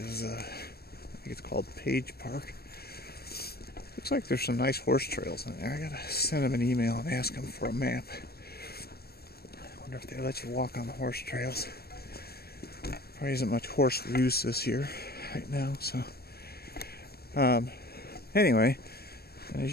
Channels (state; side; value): late; right; 0.46 ms